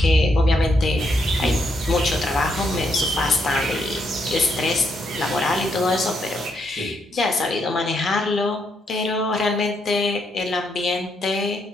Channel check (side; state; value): both; normal; correlation 0.77